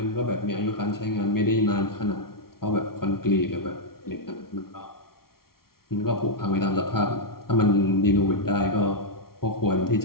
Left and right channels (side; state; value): right; late; 0.93 ms